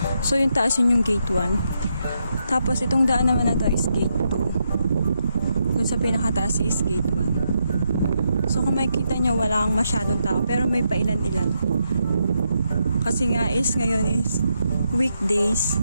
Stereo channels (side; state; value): both; inverted; correlation -0.81